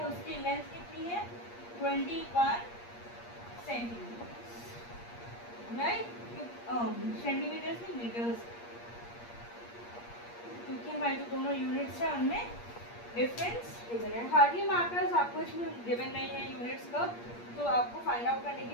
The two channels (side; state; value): right; late; 8.5 ms